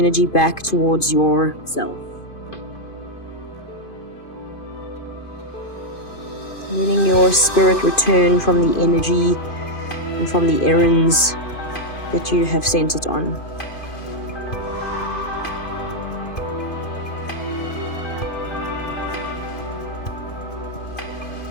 back towards yourself. Letting your spirit return from the energy and from the errands that you have sent it on.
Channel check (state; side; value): late; right; 2.5 ms